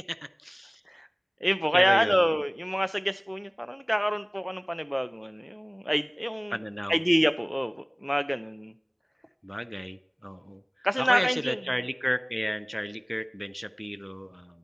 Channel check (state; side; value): identical; both; correlation 1.00